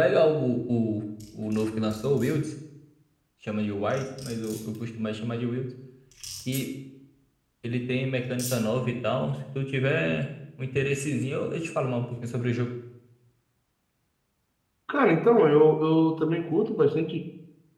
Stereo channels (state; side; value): identical; both; correlation 1.00